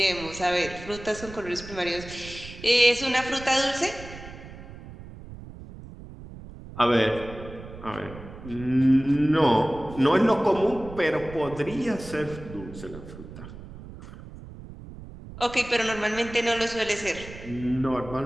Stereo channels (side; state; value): right; noise; rumble, 15 dB below the sound